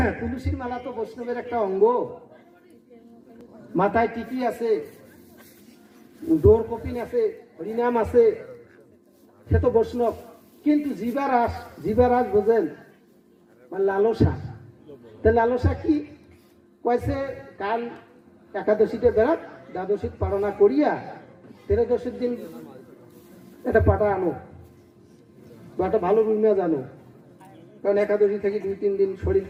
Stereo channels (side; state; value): both; identical; correlation 1.00